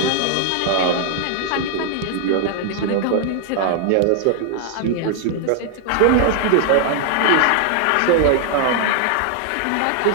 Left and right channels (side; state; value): both; different; correlation 0.00